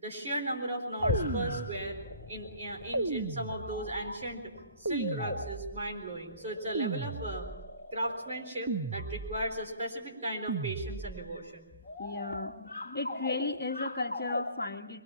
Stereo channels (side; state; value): both; inverted; correlation -0.49